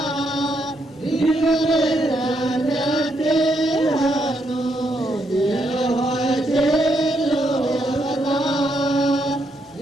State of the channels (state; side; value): normal; both; correlation 0.77